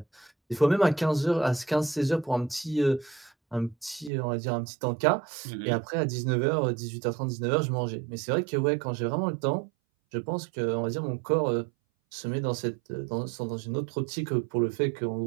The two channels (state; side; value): drops out; left; at 4.1 s